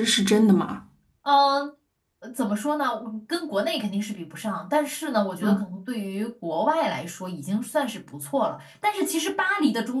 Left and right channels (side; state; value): both; identical; correlation 1.00